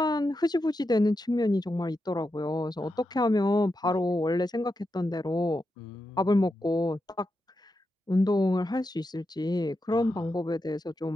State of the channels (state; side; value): normal; both; correlation 0.87